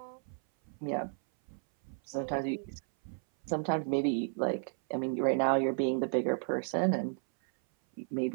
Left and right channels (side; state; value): left; silent; 56 dB below the other